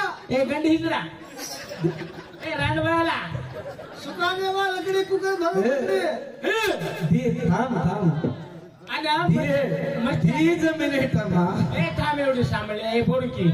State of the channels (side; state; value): both; identical; correlation 1.00